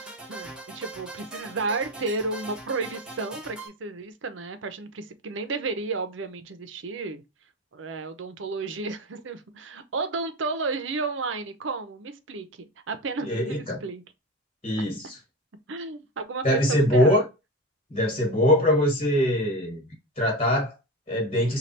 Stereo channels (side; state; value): both; normal; correlation 0.23